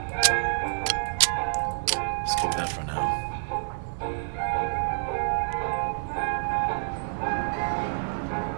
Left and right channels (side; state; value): left; silent; digital silence